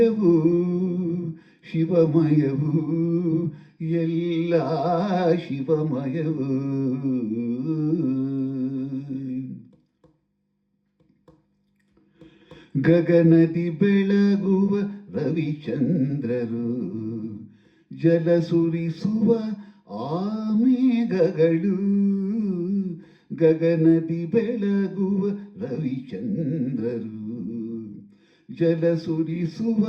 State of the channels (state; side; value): identical; both; correlation 1.00